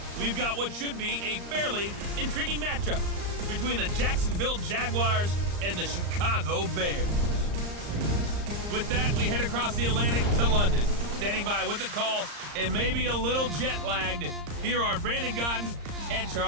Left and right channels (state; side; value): late; left; 34 ms